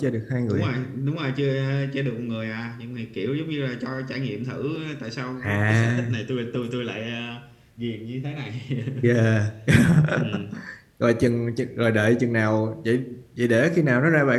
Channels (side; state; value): both; identical; correlation 1.00